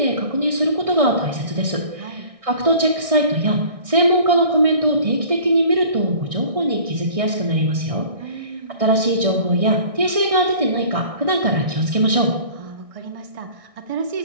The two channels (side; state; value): left; late; 1.6 ms